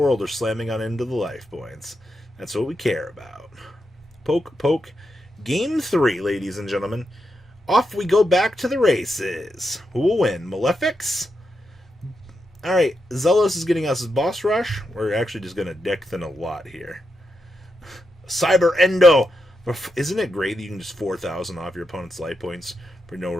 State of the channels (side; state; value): both; normal; correlation 0.85